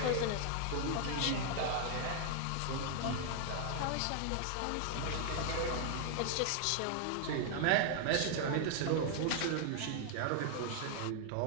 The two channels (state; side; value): different; both; correlation 0.00